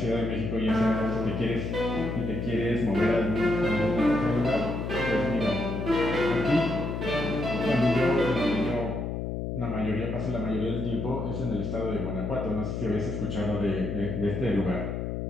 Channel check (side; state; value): left; noise; hum, 3 dB below the sound